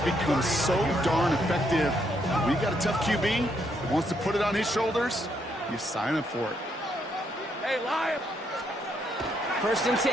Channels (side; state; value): both; normal; correlation 0.75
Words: become so darn effective. We got a tough QB that wants to put it on his shoulders. You sign up for it. Hey, Lion. 1st and